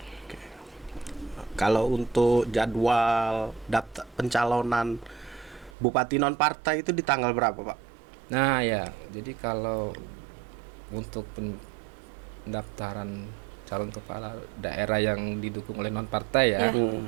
Kalau untuk jadwal daftar pencalonan bupati non partai itu di tanggal berapa Pak? Nah ya, jadi kalau untuk pendaftaran calon kepala daerah yang didukung oleh non partai ya,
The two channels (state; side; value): drops out; left; at 5.7 s